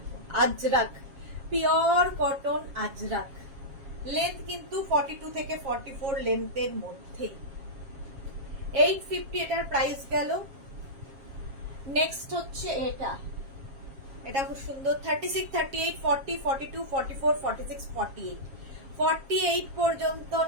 Ajrak, pure cotton Ajrak, length কিন্তু 42 থেকে 44 লেন্থের মধ্যে। 850 এটার প্রাইস গেল। নেক্সট হচ্ছে এটা খুব সুন্দর, 36, 38, 40, 42, 44, 46, 48, 48 পর্যন্ত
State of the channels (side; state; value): left; late; 7.4 ms